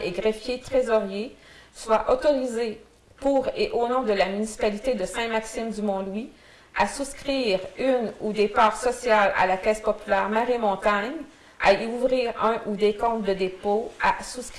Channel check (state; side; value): identical; both; correlation 1.00